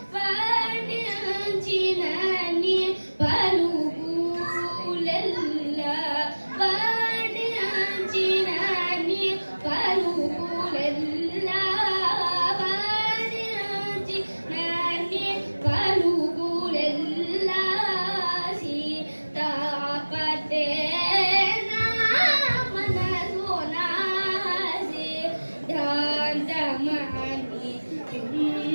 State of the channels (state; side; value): inverted; both; correlation -1.00